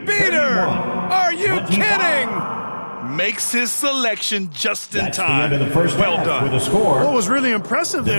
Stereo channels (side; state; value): both; inverted; correlation -1.00